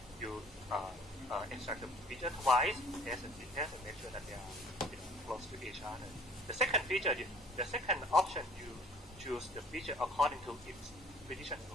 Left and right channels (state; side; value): normal; both; correlation 0.52